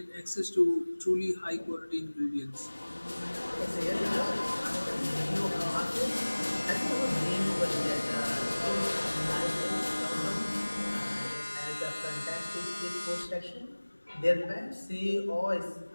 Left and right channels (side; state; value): both; inverted; correlation -1.00